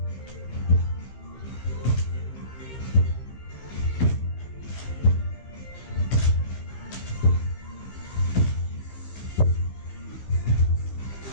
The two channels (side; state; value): right; late; 15 ms